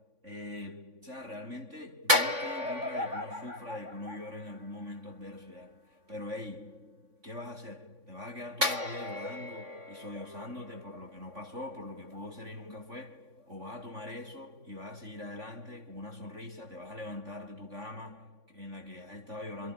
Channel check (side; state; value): left; late; 3.5 ms